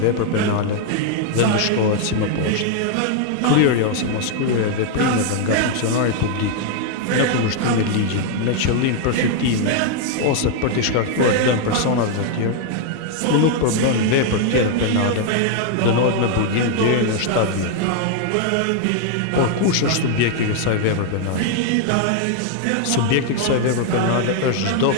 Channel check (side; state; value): both; different; correlation 0.00